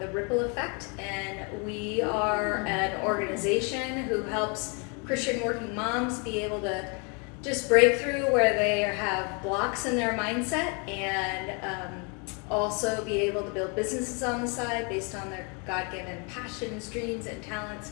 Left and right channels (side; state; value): right; quieter; 34.7 dB